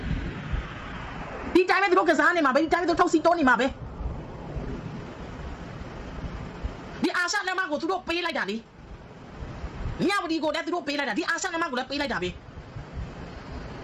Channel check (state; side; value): identical; both; correlation 1.00